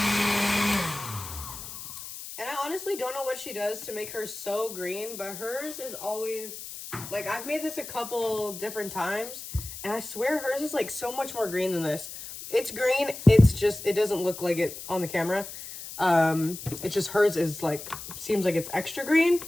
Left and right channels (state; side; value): noise; left; hiss, 11 dB below the sound